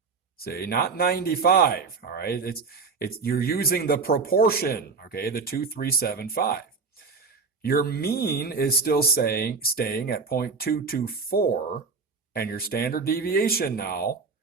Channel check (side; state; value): left; quieter; 4.8 dB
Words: See, not 95. All right, you're using the proportion. Okay, the 2375. Your mean is still staying at 0.224, and your standard deviation now